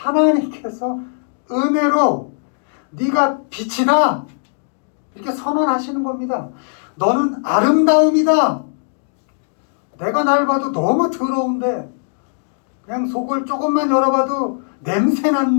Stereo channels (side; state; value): right; silent; digital silence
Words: 은혜로 네가 빛이다 이렇게 선언하시는 겁니다. 너는 아름다움이다. 내가 날 봐도 너무 더러운데 그냥 속을 조금만 열어봐도 냄새